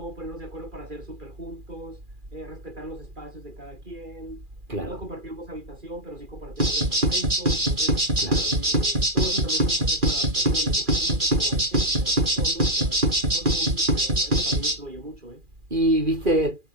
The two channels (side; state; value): left; late; 2.4 ms